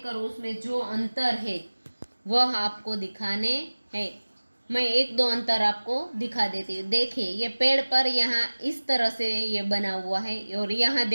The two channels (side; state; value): both; inverted; correlation -1.00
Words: उसमें जो अंतर है वह आपको दिखाने हैं। मैं एक दो अंतर आपको दिखा देती हूँ। देखिए, ये पेड़ पर यहाँ इस तरह से ये बना हुआ है और यहाँ